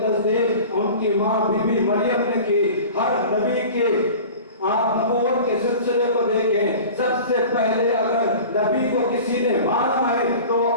تصدیق ان کی ماں بی بی مریم نے کی۔ ہر نبی کے آپ نبوت کے سلسلے کو دیکھیں، سب سے پہلے اگر نبی کو کسی نے مانا ہے تو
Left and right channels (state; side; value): inverted; both; correlation -0.39